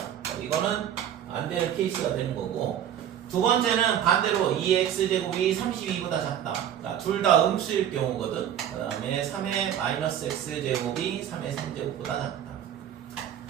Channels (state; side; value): quieter; left; 10.1 dB